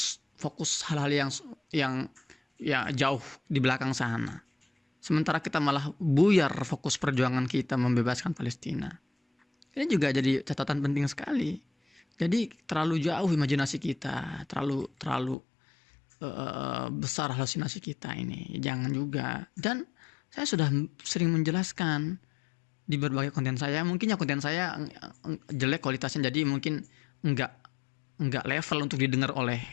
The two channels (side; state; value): right; drops out; at 15.4 s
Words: hal-hal yang ya jauh di belakang sana. sementara kita malah buyar fokus perjuangan kita membebaskan Palestina. Ini juga jadi catatan penting sekali. Jadi terlalu jauh imajinasi kita, terlalu besar halusinasi kita ini. Jangan juga. Dan saya sudah sering menjelaskan di berbagai konten saya. Mungkin ya konten saya jelek kualitasnya, jadi mungkin enggak level untuk didengar